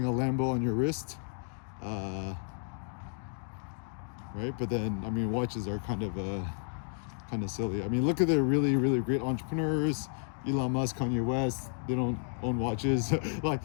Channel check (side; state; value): right; silent; digital silence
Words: on your wrist, right? But then, I mean, watches are kind of silly. I mean, look at the really, really great entrepreneurs, Elon Musk, Kanye West. They don't own watches. Like,